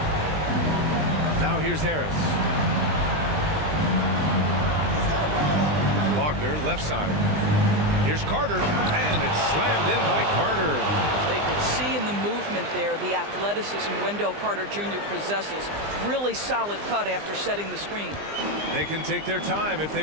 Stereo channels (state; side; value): late; left; 20 ms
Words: Now here's Harris. Wagner, left side. Here's Carter, and it's slammed in by Carter. They could see in the movement there the athleticism Wendell Carter Jr. possesses. Really solid cut after setting the screen. They can take their time if they